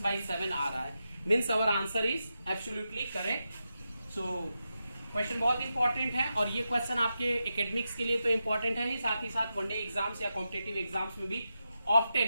आ रहा है। Means our answer is absolutely correct. So question बहुत इंपॉर्टेंट है, और ये क्वेश्चन आपके एकेडमिक्स के लिए तो इंपॉर्टेंट है ही, साथ ही साथ वनडे एग्जाम्स या कॉम्पिटेटिव एग्जाम्स में भी ऑफ्टन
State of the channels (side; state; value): both; inverted; correlation -0.88